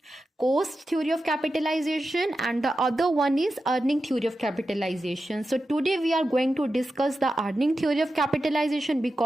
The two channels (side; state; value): both; normal; correlation 0.91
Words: cost theory of capitalization and the other one is earning theory of capitalization. So today we are going to discuss the earning theory of capitalization